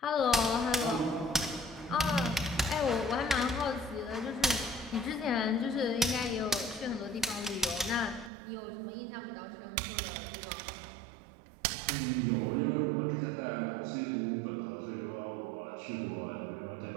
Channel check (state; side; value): drops out; left; at 8.3 s